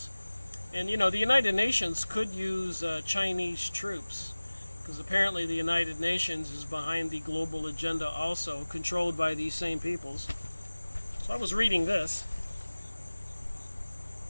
And you know, the United Nations could use Chinese troops, because apparently the United Nations is behind the global agenda also, controlled by these same peoples. So I was reading this.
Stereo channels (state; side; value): inverted; both; correlation -1.00